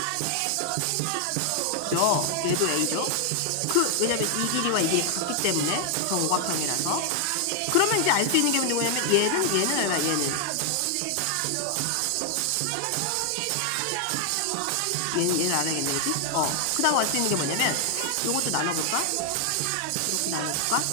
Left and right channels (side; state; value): both; different; correlation 0.00